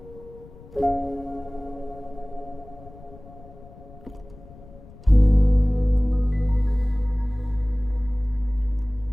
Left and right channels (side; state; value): left; noise; rumble, 20 dB below the sound